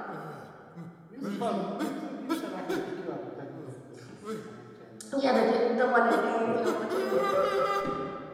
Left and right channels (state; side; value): identical; both; correlation 1.00